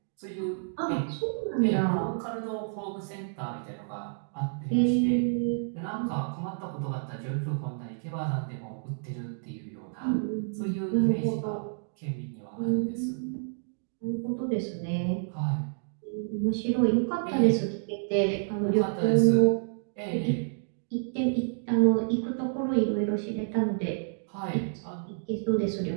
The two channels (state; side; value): silent; left; digital silence